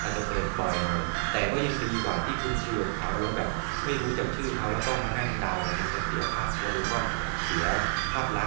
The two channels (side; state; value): left; silent; digital silence